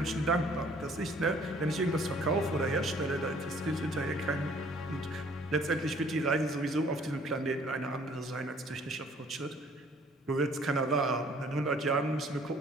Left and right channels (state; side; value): normal; both; correlation 0.58